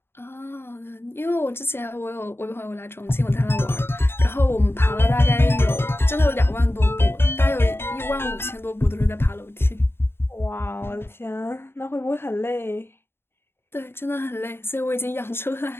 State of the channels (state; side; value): late; right; 0.11 ms